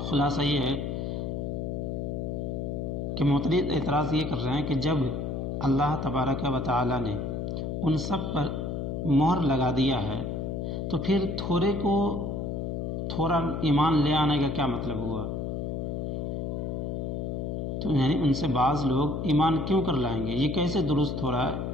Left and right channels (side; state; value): left; noise; hum, 3 dB below the sound